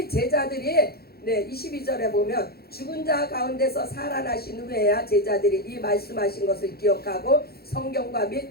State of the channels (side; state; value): right; late; 0.45 ms